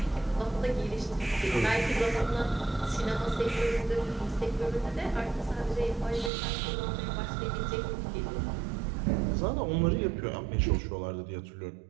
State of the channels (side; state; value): left; drops out; at 6.3 s